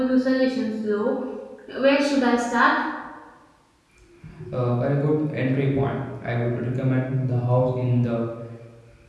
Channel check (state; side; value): identical; both; correlation 1.00